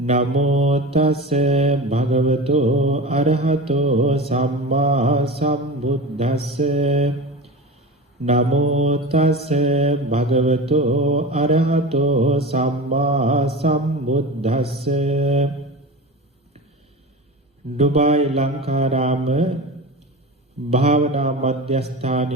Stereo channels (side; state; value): both; normal; correlation 0.29